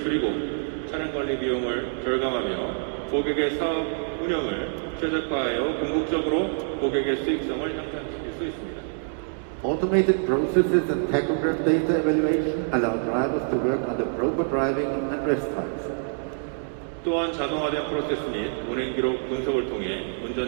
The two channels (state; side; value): silent; left; 61 dB below the other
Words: 차량 관리 비용을 절감하며 고객의 사업 운영을 최적화하여 궁극적으로 고객의 수익성을 향상시킬 수 있습니다. Automated processes and tachograph data evaluation allow drivers to work under proper driving and rest times. 또한 자동화된 프로세스 및 운행 기록 분석을 통해